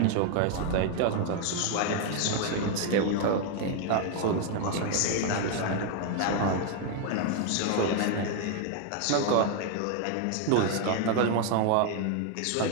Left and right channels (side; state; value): both; different; correlation 0.00